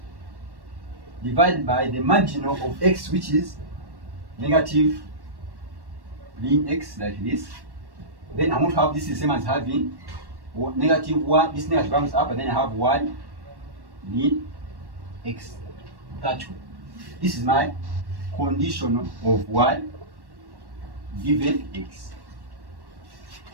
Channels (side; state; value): left; late; 1.1 ms